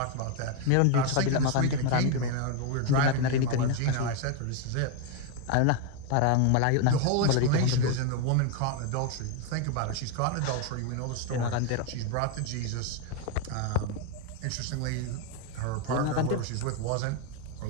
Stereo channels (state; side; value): different; both; correlation 0.01